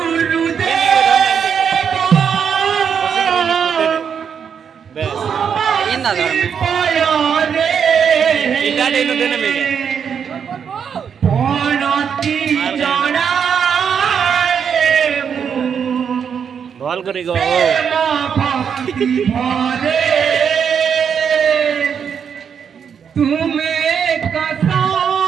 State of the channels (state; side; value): quieter; left; 7.3 dB